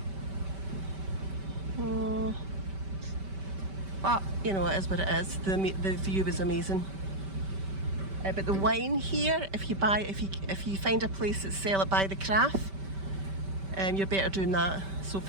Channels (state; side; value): late; left; 5.2 ms